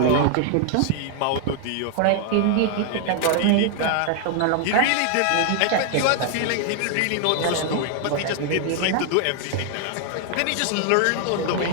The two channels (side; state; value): both; different; correlation 0.00